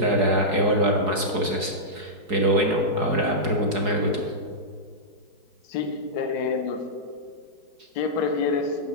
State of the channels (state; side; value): late; left; 4.7 ms